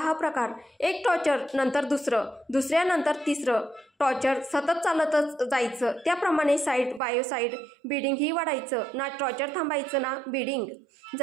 प्रकार। एक टॉर्चर नंतर दुसरं, दुसऱ्यानंतर तिसरं टॉर्चर सतत चालतच जायचं। त्याप्रमाणे साईड बायो साईड बिडिंग ही वाढायचं, ना टॉर्चर थांबायचं ना बिडिंग।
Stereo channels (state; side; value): drops out; left; at 7.0 s